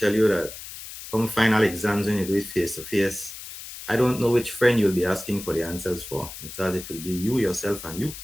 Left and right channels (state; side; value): noise; left; hiss, 12 dB below the sound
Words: you that come final exams when you do it face to face, I don't know which friend you'll be asking for the answers for because it will be you, yourself, and you